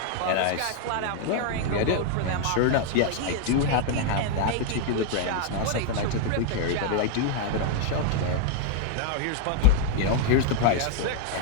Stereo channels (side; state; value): both; different; correlation 0.00